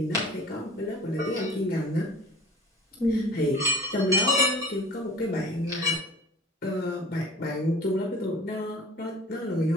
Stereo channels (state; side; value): normal; both; correlation 0.44